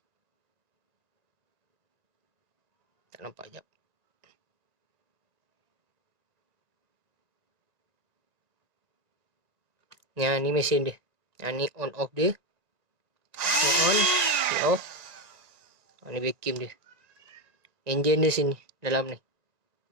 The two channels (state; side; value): late; left; 1.9 ms